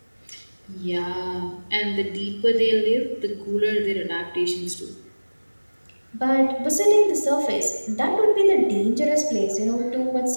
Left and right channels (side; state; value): both; inverted; correlation -1.00